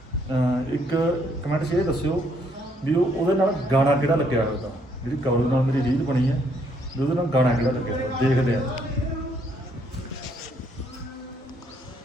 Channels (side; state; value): both; normal; correlation 0.69